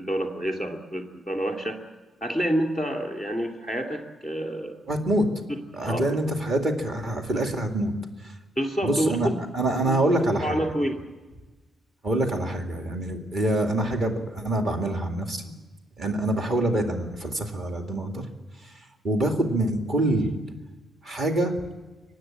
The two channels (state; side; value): normal; both; correlation 0.72